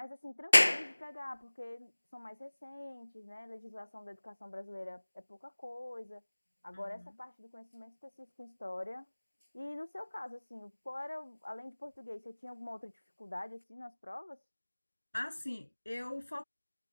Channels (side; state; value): both; inverted; correlation -1.00